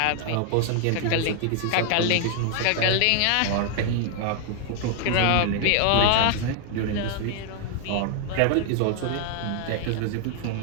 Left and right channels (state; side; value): different; both; correlation 0.00